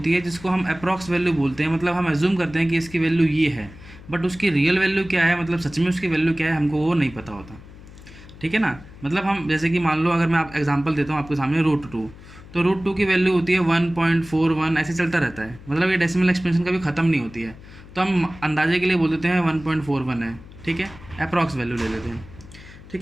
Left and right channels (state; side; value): noise; left; hum, 19 dB below the sound